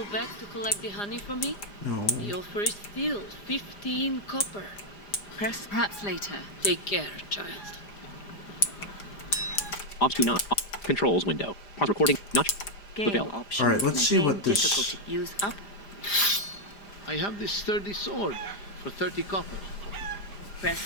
back to collect the honey for me? No. You'll first steal 15 copper. Press Perhaps later. Take care, child. Ops 29. Controls window. Pause recording. Not. game bell. options. Alright, let's see Game what this- difficulty. Use up. I have this sturdy sword for 30 copper.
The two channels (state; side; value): late; right; 5.0 ms